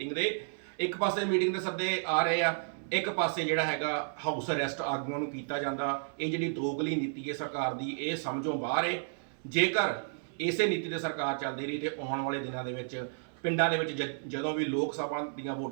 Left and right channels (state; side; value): silent; left; 56 dB below the other